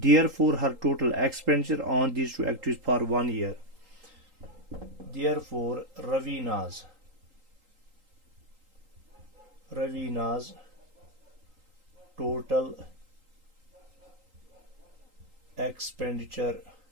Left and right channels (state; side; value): late; left; 3.8 ms